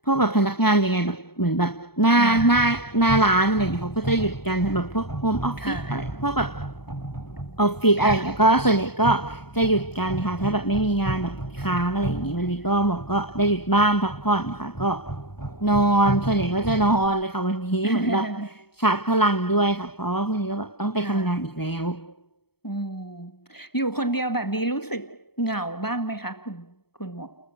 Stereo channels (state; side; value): late; right; 0.97 ms